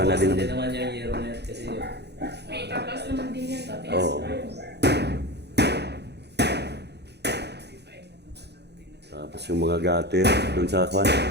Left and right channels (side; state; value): left; late; 0.49 ms